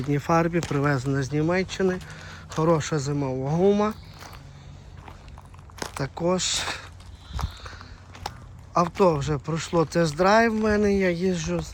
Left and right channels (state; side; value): identical; both; correlation 1.00